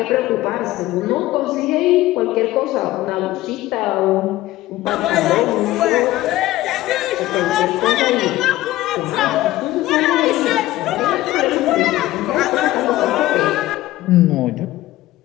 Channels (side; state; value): right; quieter; 16.5 dB